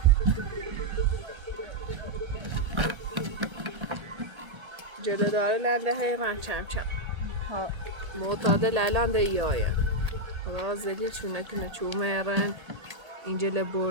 جلو داره لنده حیران چم ها معتادل الان ده ایایه خدا زلی چونه کنه چومه ایران اینجل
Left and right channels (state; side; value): late; left; 1.8 ms